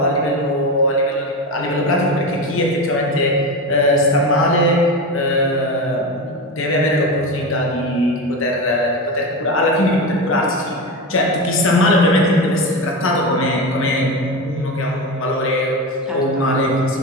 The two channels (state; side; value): normal; both; correlation 0.20